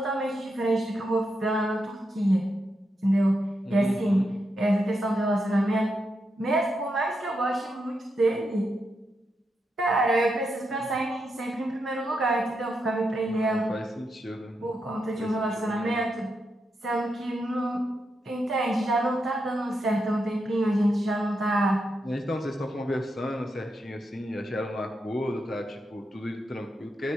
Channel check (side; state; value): both; normal; correlation 0.84